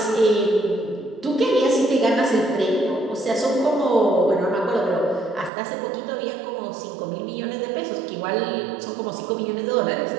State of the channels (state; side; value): drops out; left; at 5.5 s